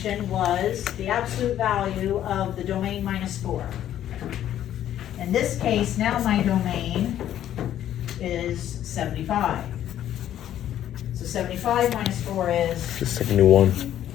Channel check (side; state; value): right; quieter; 11.4 dB